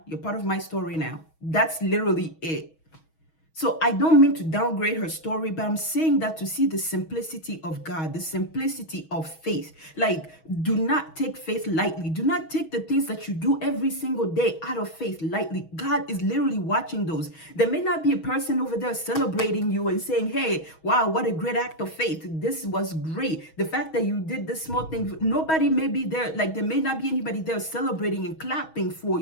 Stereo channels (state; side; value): late; right; 6.3 ms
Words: You're part of my story now. That's literally it. So I don't mean to downgrade her story, but I'm saying that to see the simplicity of God, the simplicity of faith. Like, do not take faith lightly. Do not take the things that you do every single day out of faith lightly. God is literally watching those. There may not be a person over there celebrating you and saying, hey, wow, what a great act of faith. This was great. The fact that you did this small thing, nobody may be there. Like, there may not be anybody there celebrating and clapping for